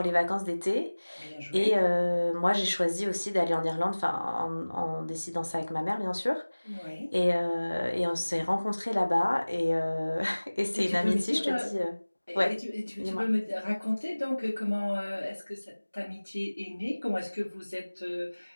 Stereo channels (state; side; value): inverted; both; correlation -1.00